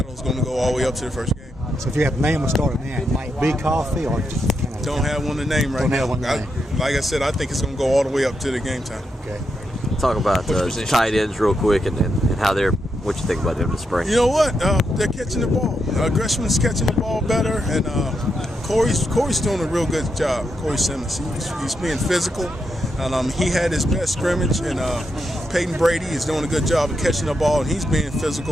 is going to go all the way up to the first game. So if you have a name of starting now, it might be Coffey, or just kind of don't have one to name right now. Like I said, I think it's going to go all the way up to the game time. Okay. Talk about tight ends real quick and how they're. What you think about them this spring? You know what? They're catching the ball. Greshman's catching the ball better, and Corey's doing a real good job. Corey Simmons, he's being physical, and he had his best scrimmage. And Peyton Brady is doing a good job of catching the ball, and he's being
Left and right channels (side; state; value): both; normal; correlation 0.83